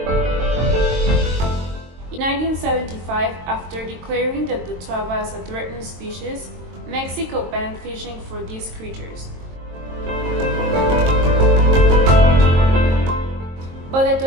In 1975, after declaring the totuaba as a threatened species, Mexico banned fishing for these creatures. But the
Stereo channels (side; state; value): left; late; 22 ms